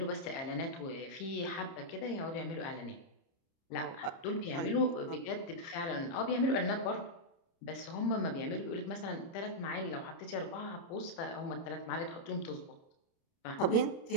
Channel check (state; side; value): late; right; 30 ms